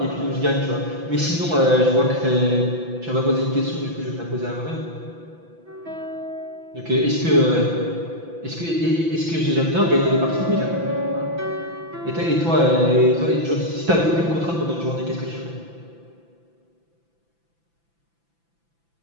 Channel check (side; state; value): left; late; 6.0 ms